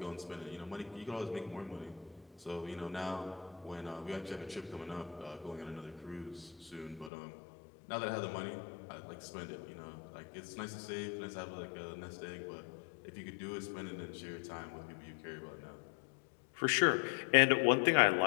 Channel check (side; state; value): right; drops out; at 7.1 s